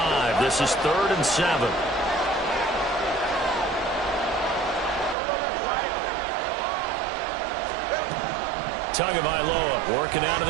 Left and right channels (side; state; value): left; drops out; at 5.2 s